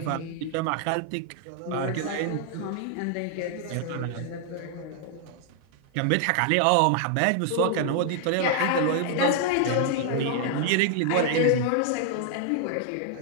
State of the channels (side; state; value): both; different; correlation 0.00